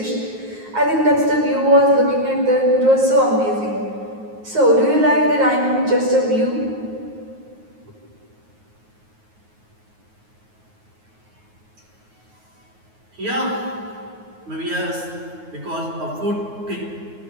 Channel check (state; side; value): late; left; 9.4 ms